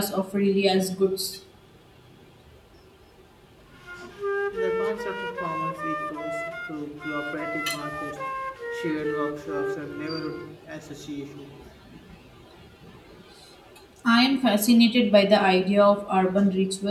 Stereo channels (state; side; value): identical; both; correlation 1.00